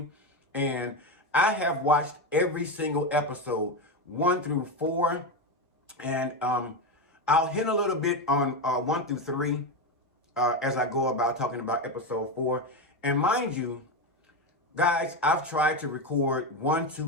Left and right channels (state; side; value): normal; both; correlation 0.14